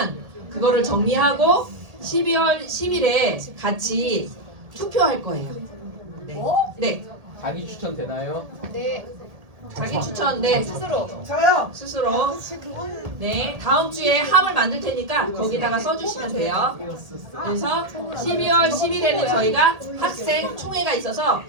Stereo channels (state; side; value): late; left; 1.8 ms